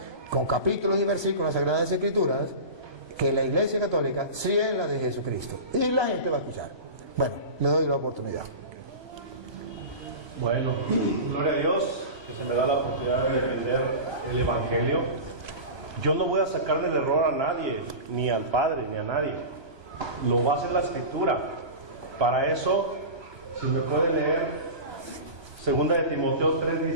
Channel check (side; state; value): left; late; 1.2 ms